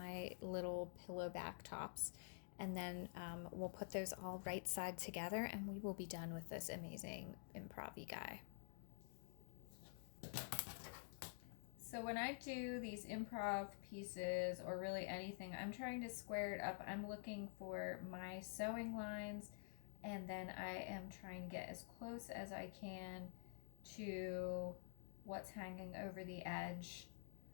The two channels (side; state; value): right; silent; digital silence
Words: little pillow back tops. And then we'll put those all right side together and we will be done with this amazing improv-y guy. So when I do these improv pieces, or really anything, I'm trying to square it up. I'm looking for my sewing lines, and then I am trying to get as close as I can to what's hanging over the edge